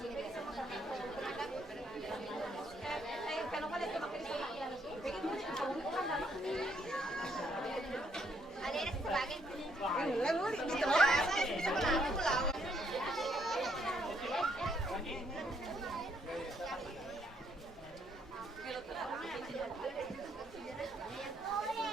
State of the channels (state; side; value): normal; both; correlation 0.71